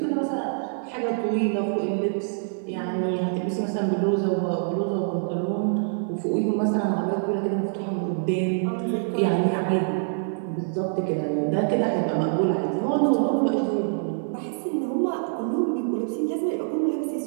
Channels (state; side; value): silent; left; digital silence